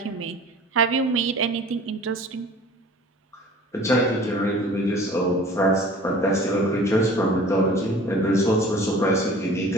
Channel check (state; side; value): normal; both; correlation 0.45